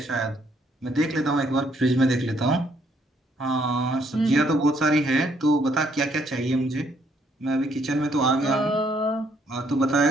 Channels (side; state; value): both; normal; correlation 0.69